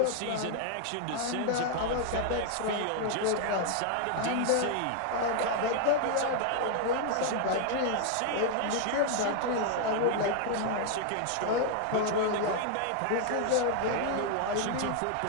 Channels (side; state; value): both; different; correlation 0.00